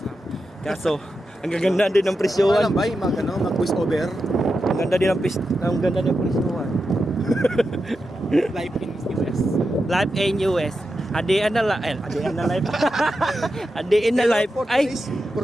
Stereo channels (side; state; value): both; normal; correlation 0.89